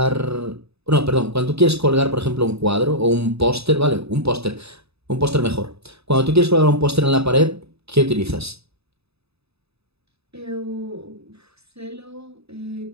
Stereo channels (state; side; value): late; left; 0.79 ms